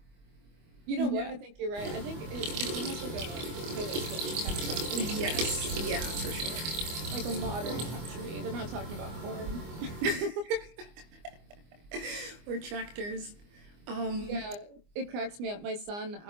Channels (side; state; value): left; late; 24 ms